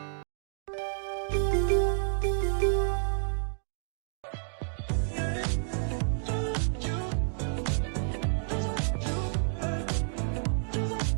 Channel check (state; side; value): silent; left; digital silence